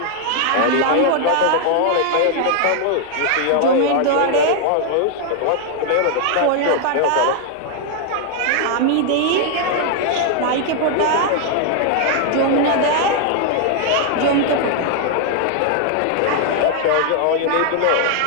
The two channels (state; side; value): different; both; correlation 0.00